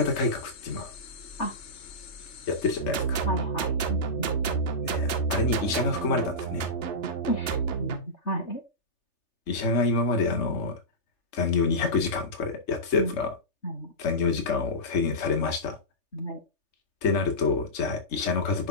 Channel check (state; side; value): late; right; 3.4 ms